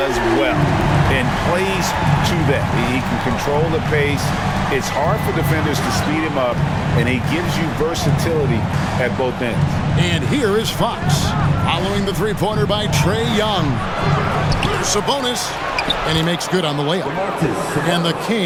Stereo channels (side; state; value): both; identical; correlation 1.00